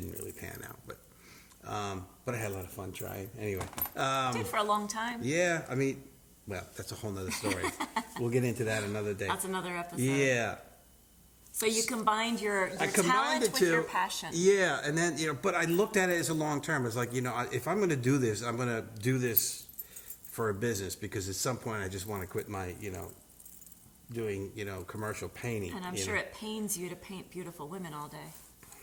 really pan out. But I had a lot of fun trying. Anyway. Did for a long time. Yeah, that's a whole nother story. We'll get into that another day. That's another episode. Yeah. So you combined your talent with your passion. Yeah, and then, but I looked at it as a long term. It's like, if I'm going to do this, I'm going to do this for a business because at some point I just want to quit my, doing, commercial painting. And I'm sure it pains you to paint beautiful women all day.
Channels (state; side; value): identical; both; correlation 1.00